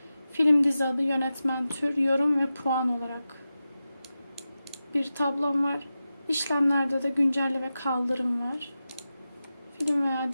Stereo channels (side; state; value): both; inverted; correlation -0.93